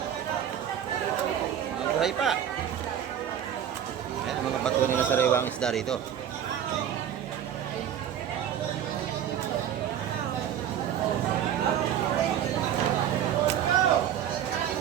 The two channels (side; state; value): left; quieter; 9.8 dB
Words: Buhay pa. Ayan, mga batuan nila sariwa ang isda rito.